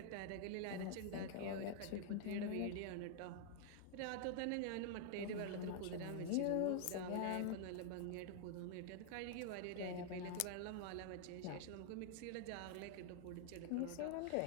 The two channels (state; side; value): different; both; correlation 0.00